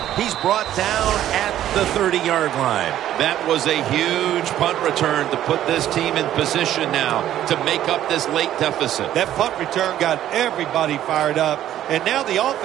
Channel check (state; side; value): quieter; left; 12.1 dB